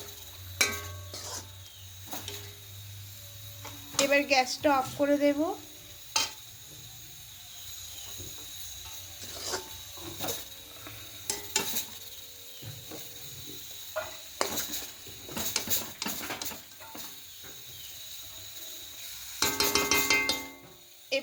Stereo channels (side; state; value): both; identical; correlation 1.00